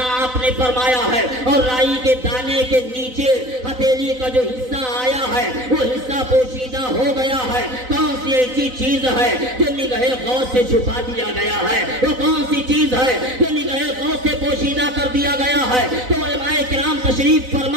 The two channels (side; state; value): left; late; 4.0 ms